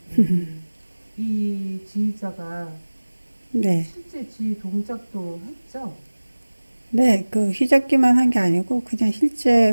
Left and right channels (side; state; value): both; inverted; correlation -1.00